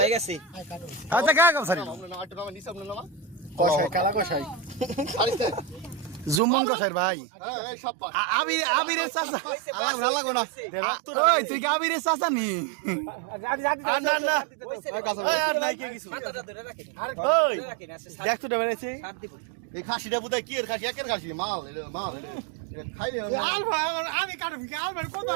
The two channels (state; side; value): drops out; left; at 6.4 s